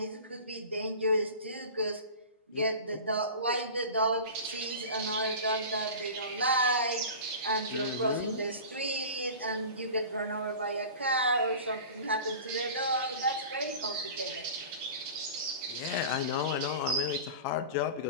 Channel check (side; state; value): both; inverted; correlation -0.35